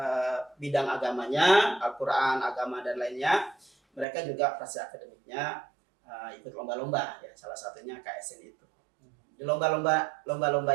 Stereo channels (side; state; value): left; drops out; at 4.0 s